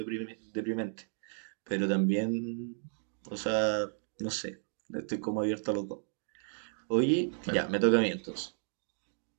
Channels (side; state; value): left; silent; digital silence